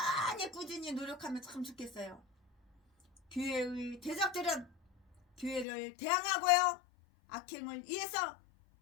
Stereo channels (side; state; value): right; drops out; at 5.7 s